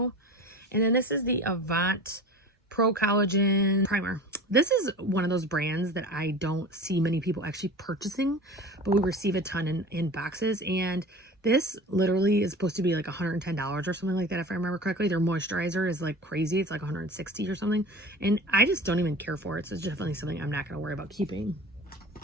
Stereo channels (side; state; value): both; normal; correlation 0.36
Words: And then this is the Avant Pro Collagen Primer. This is one of those brands that I don't see many people actually purchasing, but we receive a ton in boxes. And this literally is supposed to be like $110 or something like that, if I remember correctly. Their moisturizer is like crazy. It's like $160 or something. And I just don't even care for it. So it's definitely something I'm not going to worry about keeping.